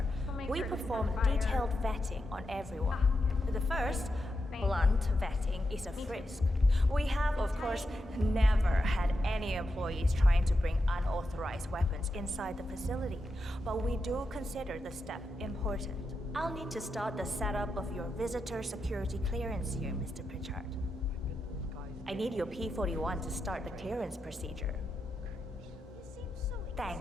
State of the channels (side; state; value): both; normal; correlation 0.87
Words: we perform detailed vetting on everyone. The first, blunt vetting, is a frisk. We have, of course, never had any employees trying to bring unauthorized weapons inside the facility, but we do consider the step important. I'll need to start the setup of your visitor security clearance here, Mr. Pritchard. I need your P-41 to start the clearance procedure.